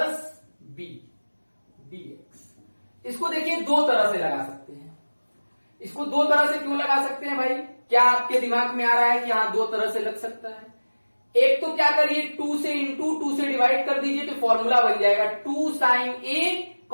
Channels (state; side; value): inverted; both; correlation -1.00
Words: B dx. इसको देखिए दो तरह से लगा सकते हैं। इसको दो तरह से क्यों लगा सकते हैं भाई, क्या आपके दिमाग में आ रहा है कि यहां दो तरह से लग सकता है। एक तो क्या करिए, 2 से इंटू 2 से डिवाइड कर दीजिए, तो फॉर्मूला बन जाएगा 2 साइन ए